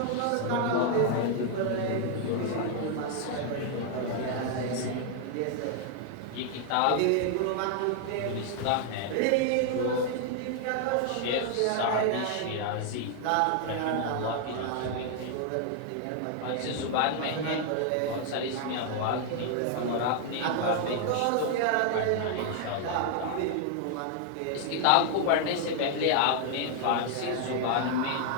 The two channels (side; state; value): both; different; correlation 0.00